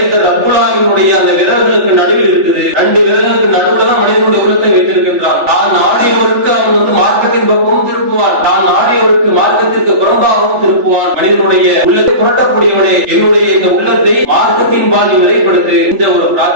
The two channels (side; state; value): left; late; 3.4 ms